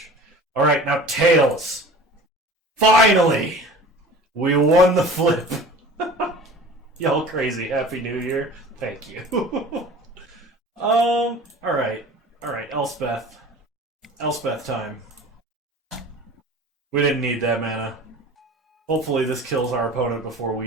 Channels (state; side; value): normal; both; correlation 0.41